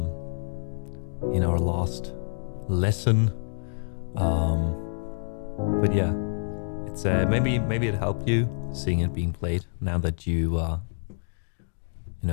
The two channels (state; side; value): silent; right; digital silence